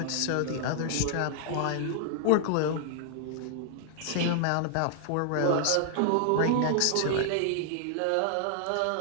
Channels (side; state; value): both; different; correlation 0.00